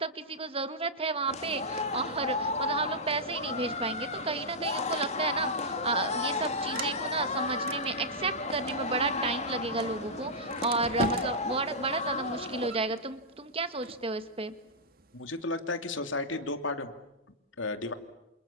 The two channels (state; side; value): normal; both; correlation -0.10